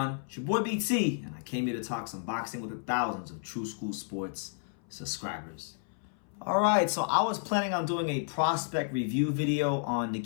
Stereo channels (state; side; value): silent; right; 57 dB below the other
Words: It's your boy BT, and I came here to talk some boxing with the thousands of True School Sports subscribers. Alright, so I was planning on doing a prospect review video on